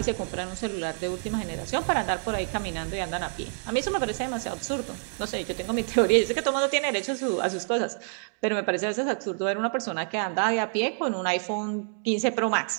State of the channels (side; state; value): left; silent; 60 dB below the other